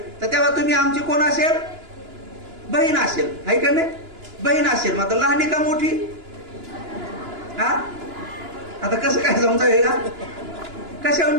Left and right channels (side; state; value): left; late; 2.9 ms